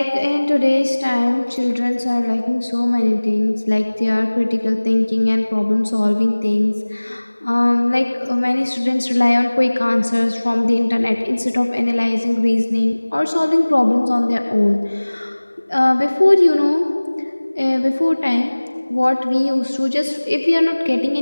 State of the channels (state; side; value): inverted; both; correlation -1.00